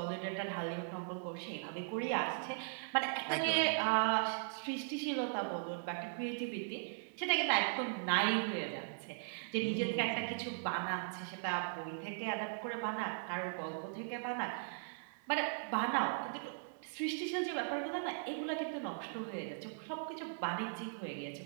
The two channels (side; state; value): left; silent; digital silence